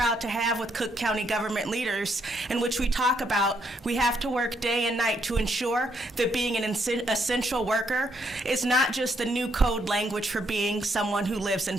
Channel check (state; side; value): normal; both; correlation 0.74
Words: to have with Cook County government leaders in which we talk about We have to work day and night to ensure that being an essential worker is not just the new code language for being someone who lives in